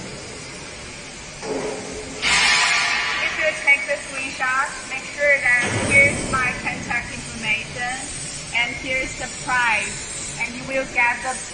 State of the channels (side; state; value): both; identical; correlation 1.00